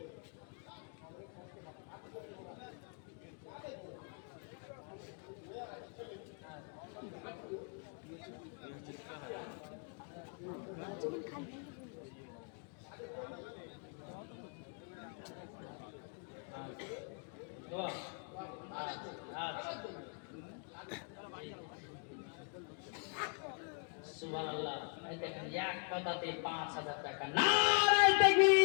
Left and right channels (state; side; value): quieter; right; 38.7 dB